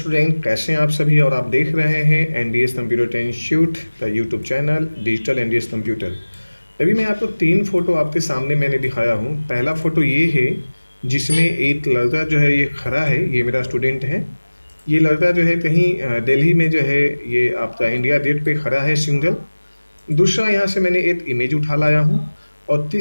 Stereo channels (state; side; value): inverted; both; correlation -1.00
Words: कैसे हैं आप सभी। और आप देख रहे हैं एनडीएस कंप्यूटर इंस्टीट्यूट का YouTube channel digital NDS computer. अभी मैं आपको तीन फोटो आपके सामने मैंने दिखाया हूँ। पहला फोटो ये है जिसमें एक लड़का जो है ये खड़ा है, ये मेरा स्टूडेंट है। ये लड़का जो है कहीं दिल्ली में जो है ये आपका इंडिया गेट पे खड़ा है सिंगल। दूसरा यहाँ से मैंने एक इमेज उठा लाया हूँ। और